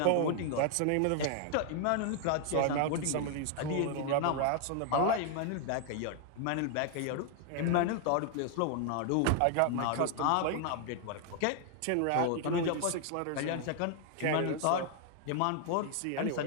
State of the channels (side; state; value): both; different; correlation 0.00